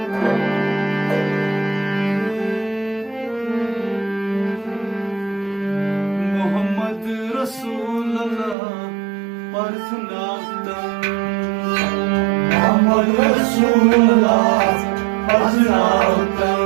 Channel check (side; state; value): left; drops out; at 8.6 s